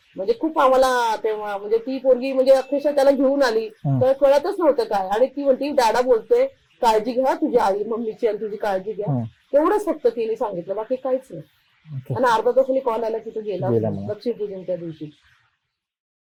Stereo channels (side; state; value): both; identical; correlation 1.00